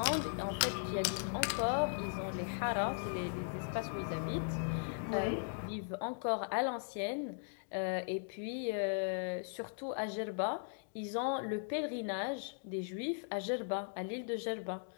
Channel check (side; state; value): right; silent; digital silence